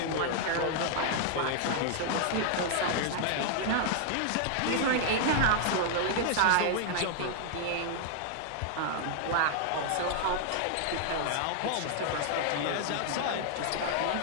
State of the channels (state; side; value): different; both; correlation -0.01